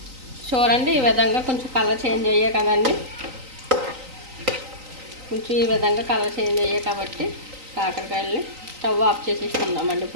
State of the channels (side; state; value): left; late; 3.9 ms